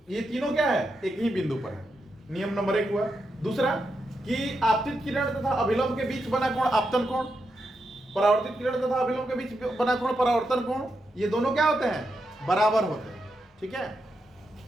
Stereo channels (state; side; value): normal; both; correlation 0.85